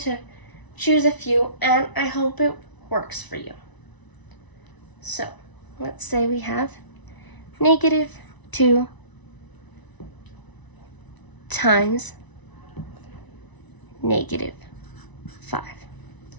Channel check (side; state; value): right; late; 1.0 ms